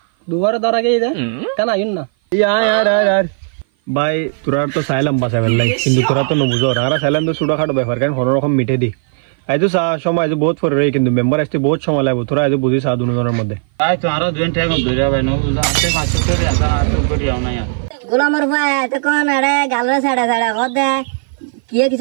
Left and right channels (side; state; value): left; silent; 56 dB below the other